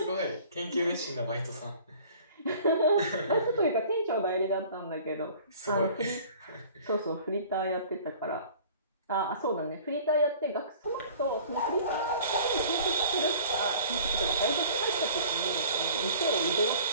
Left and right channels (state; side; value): inverted; both; correlation -0.48